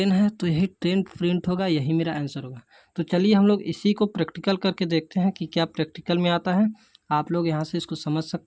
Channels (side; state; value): both; identical; correlation 1.00